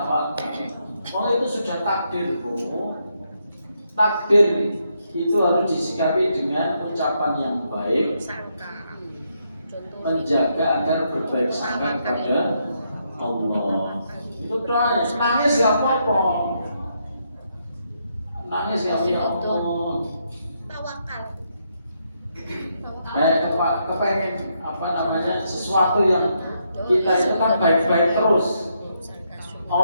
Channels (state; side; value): inverted; both; correlation -0.78